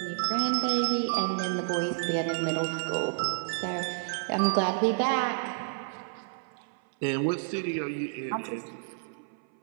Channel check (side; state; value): left; silent; 58 dB below the other